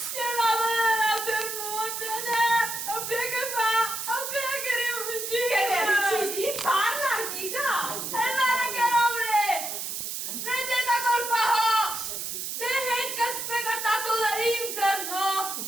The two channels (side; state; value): right; noise; hiss, 4 dB below the sound